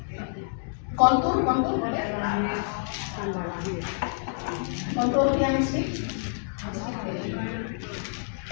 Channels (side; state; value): right; silent; digital silence